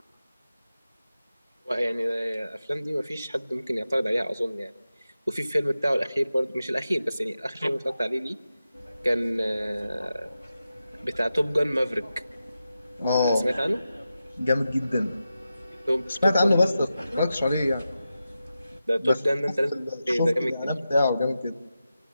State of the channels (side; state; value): both; inverted; correlation -0.91